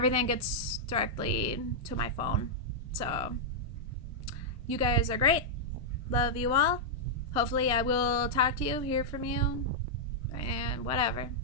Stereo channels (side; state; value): both; normal; correlation -0.07